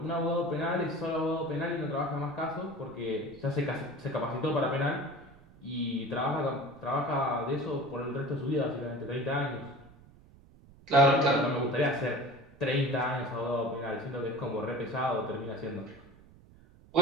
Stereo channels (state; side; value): noise; right; rumble, 24 dB below the sound